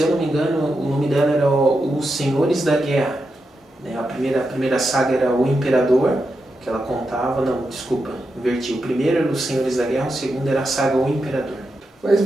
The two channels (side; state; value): both; normal; correlation 0.87